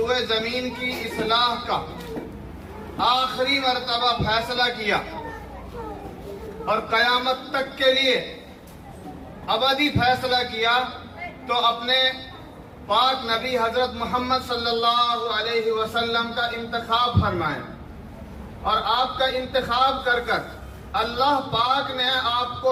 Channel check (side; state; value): both; identical; correlation 1.00